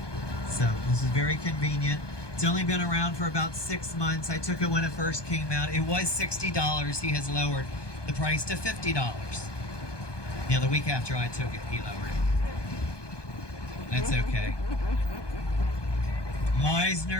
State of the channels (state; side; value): late; right; 1.2 ms